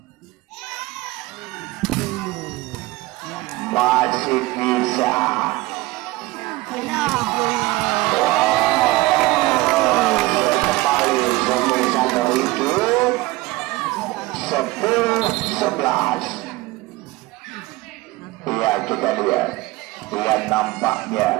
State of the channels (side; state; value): left; quieter; 20.1 dB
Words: Masih bisa. Kembali semisal hidup 10-11. Ya, kita lihat. Yang